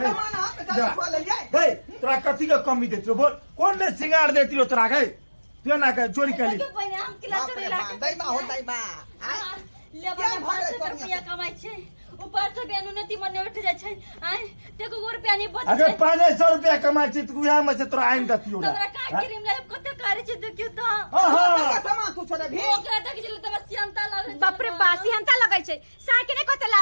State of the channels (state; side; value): inverted; both; correlation -1.00